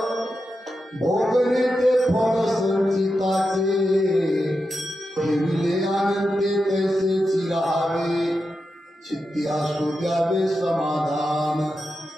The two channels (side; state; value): both; normal; correlation 0.89